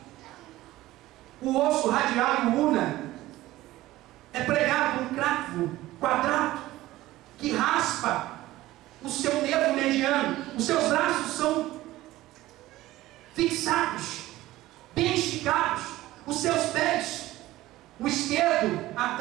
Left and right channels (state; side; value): quieter; left; 16.6 dB